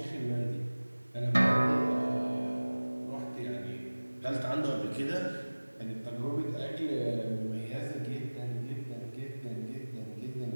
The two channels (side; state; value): both; inverted; correlation -1.00